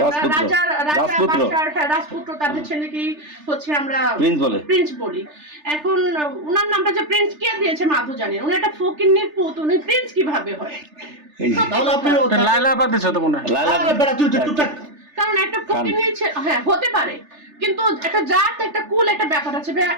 আমরা রাজপুত্র তাদের ছেলেকেই হচ্ছে আমরা প্রিন্স বলি। এখন উনার নামটা যে প্রিন্স কে দিয়েছে মাধু জানেন, উনি একটা ফকিন্নির পুত, উনি প্রিন্স কিভাবে হয়? তাহলে আপনি লাইলা আপা দিছো তো মনে হয়। লাইলা বেটা তুই চুপচাপ। কারণ একটা ফকিন্নি হ্যাঁ হতে পারে, কিন্তু একটা জাত একটা কুল একটা ব্যাপার আছে।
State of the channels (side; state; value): left; late; 3.3 ms